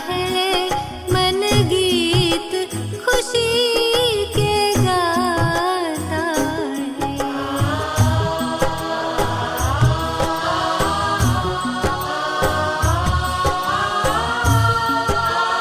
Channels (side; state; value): both; identical; correlation 1.00